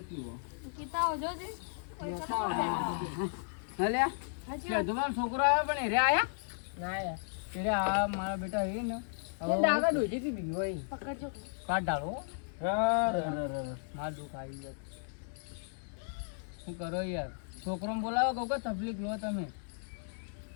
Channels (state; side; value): silent; right; digital silence